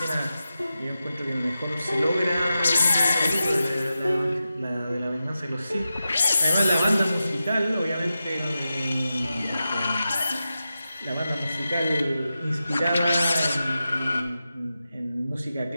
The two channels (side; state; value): both; inverted; correlation -0.91